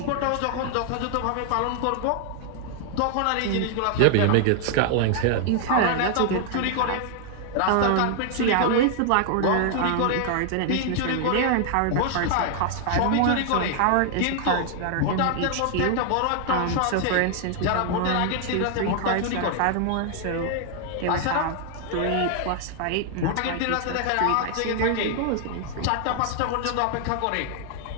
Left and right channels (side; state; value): both; different; correlation 0.00